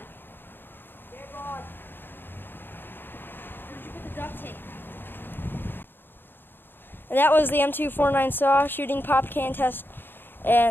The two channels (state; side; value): late; right; 0.099 ms